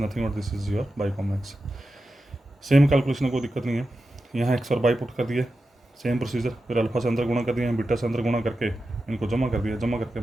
nothing but this is your by comma x. Same calculation, कोई दिक्कत नहीं है। यहाँ एक्स और बाई पुट कर दिए, सेम प्रोसीजर। फिर अल्फा से अंदर गुणा कर दिया, बीटा से अंदर गुणा करके इनको जमा कर दिया, जमा करके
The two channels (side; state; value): both; normal; correlation 0.91